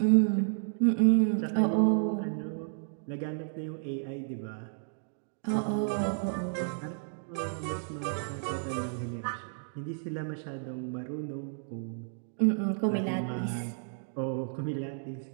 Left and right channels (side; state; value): left; silent; digital silence